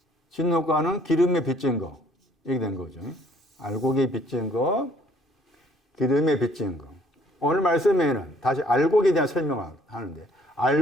진노가는 기름에 빚진 거. 이렇게 된 거죠. 알고에 빚진 거, 기름에 빚진 거. 오늘 말씀에는 다시 알곡에 대한 설명을 하는데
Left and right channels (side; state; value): both; normal; correlation 0.60